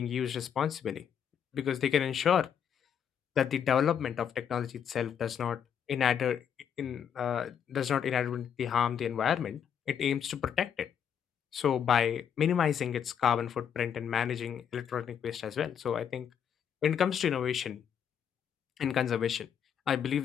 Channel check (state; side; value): quieter; right; 8.3 dB